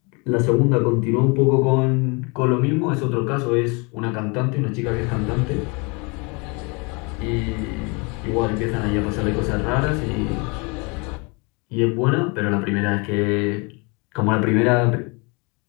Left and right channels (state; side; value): quieter; right; 30.3 dB